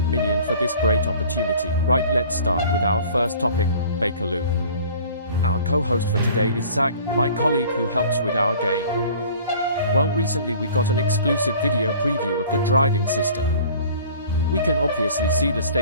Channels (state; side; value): inverted; both; correlation -0.48